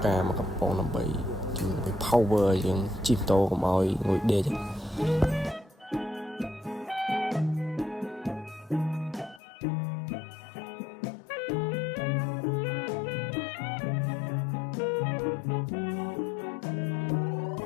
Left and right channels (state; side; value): drops out; right; at 9.4 s